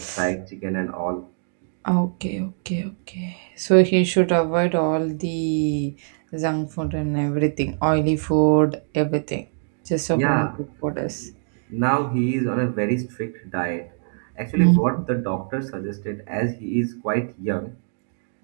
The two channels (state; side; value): silent; left; 63 dB below the other